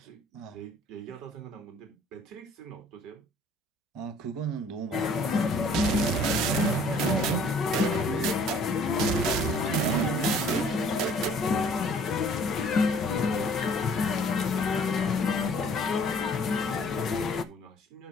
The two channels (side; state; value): both; normal; correlation 0.55